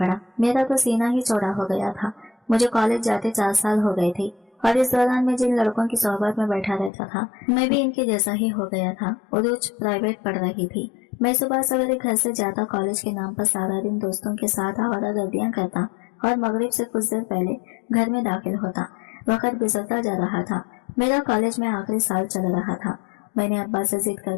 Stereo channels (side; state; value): right; drops out; at 6.9 s